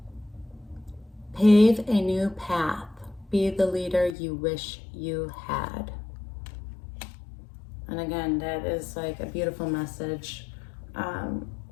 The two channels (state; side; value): drops out; right; at 4.2 s